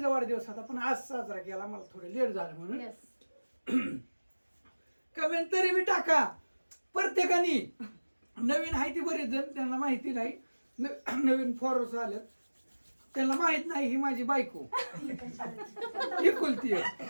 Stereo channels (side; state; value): both; inverted; correlation -1.00